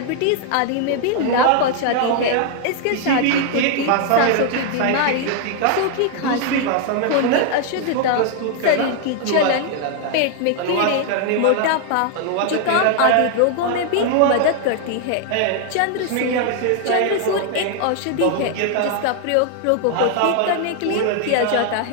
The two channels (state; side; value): different; both; correlation 0.00